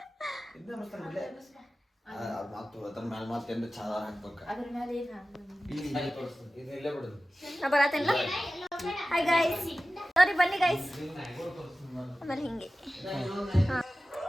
ಹಾಯ್ ಗೈಸ್, ಸಾರಿ ಬನ್ನಿ ಗೈಸ್. ಆಮೇಲೆ ಹಿಂಗೆ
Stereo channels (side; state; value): both; normal; correlation 0.95